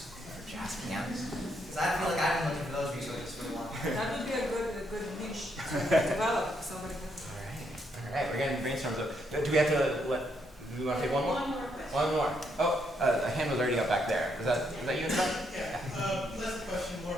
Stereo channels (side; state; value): both; normal; correlation 0.75